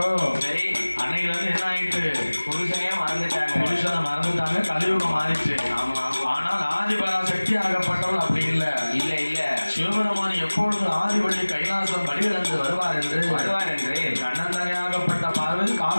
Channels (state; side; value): inverted; both; correlation -1.00